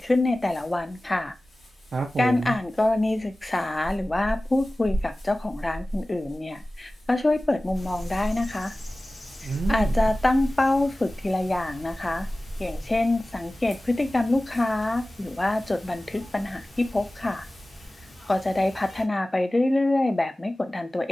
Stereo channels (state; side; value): normal; both; correlation 0.97